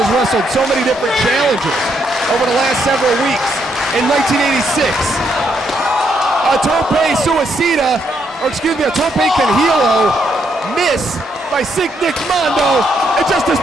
wrestled so many different challengers over the last several weeks. In 1986, a tope suicida, or excuse me, a tope canhilo miss by Sick Nick Mondo, and Justice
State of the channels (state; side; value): normal; both; correlation 0.75